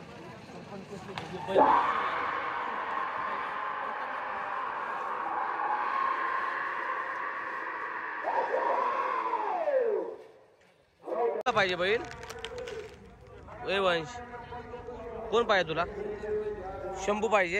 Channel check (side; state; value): both; identical; correlation 1.00